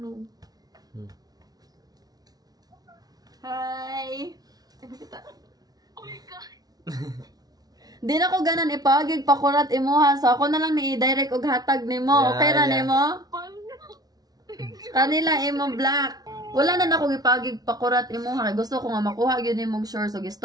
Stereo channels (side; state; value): left; late; 0.19 ms